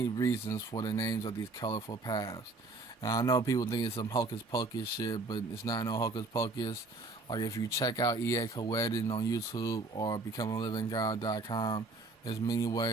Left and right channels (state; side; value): quieter; left; 3.4 dB